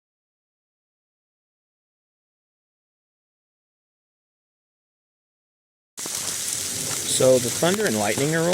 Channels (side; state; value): both; identical; correlation 1.00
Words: So the thunder and lightning are